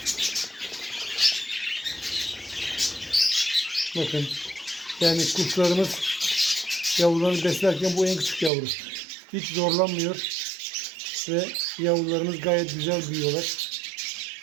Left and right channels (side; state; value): left; drops out; at 8.5 s